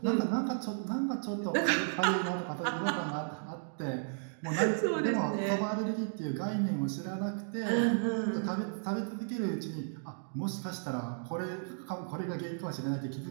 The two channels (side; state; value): left; silent; digital silence